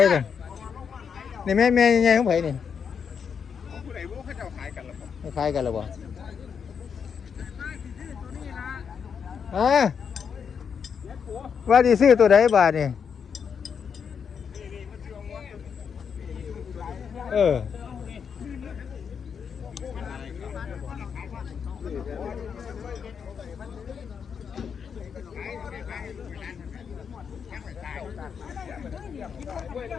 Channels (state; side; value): quieter; right; 6.8 dB